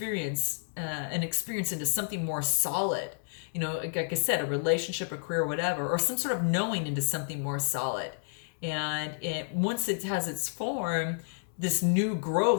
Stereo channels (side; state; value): right; silent; 58 dB below the other